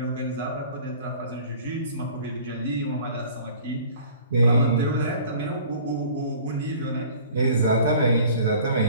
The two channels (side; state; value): both; inverted; correlation -0.49